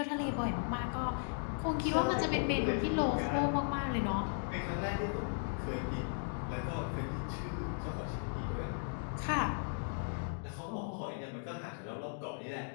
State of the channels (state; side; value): silent; right; digital silence